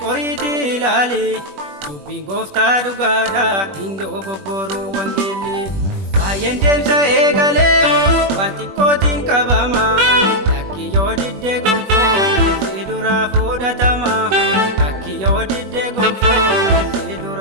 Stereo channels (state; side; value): late; left; 21 ms